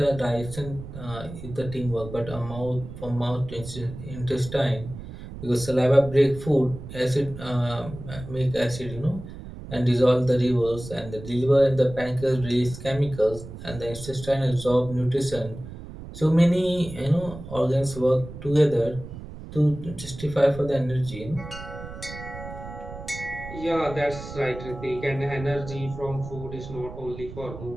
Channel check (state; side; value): noise; right; rumble, 12 dB below the sound